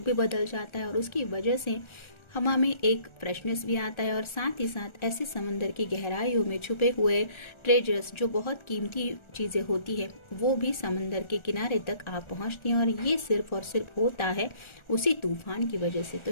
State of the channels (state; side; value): late; right; 1.4 ms